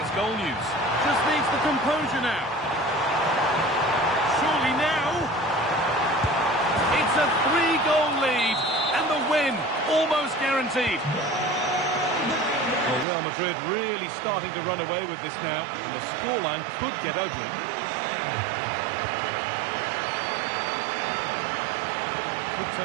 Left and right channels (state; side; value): drops out; left; at 13.1 s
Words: goal news. Just needs the composure now. Surely now. It's a 3-goal lead. And the win almost guaranteed. Well, Real Madrid really starting to run away with this now. And the scoreline could get ugly. Could